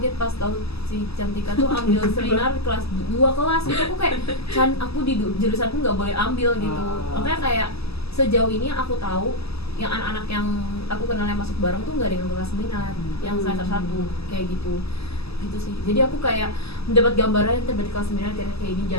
pas tahu si Cantika tuh ambil seminar kelas 2 kelas gitu. Aku kayak aku di jurusanku nggak boleh ambil gitu. Makanya kayak sejauh ini aku tahu yang anak-anak yang aku kenal yang masuk bareng tuh nggak ada yang kelas minat, yang semester 1 kayak gitu sih. Jadi aku kayak mendapat gambaran tiba di kelas 9 kayak ini,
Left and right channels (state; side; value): late; right; 0.78 ms